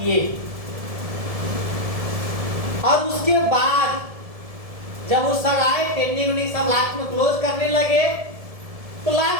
और उसके बाद जब वो सर आए, ट्रेनिंग सब लास्ट में क्लोज करने लगे, तो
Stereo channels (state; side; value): late; left; 1.7 ms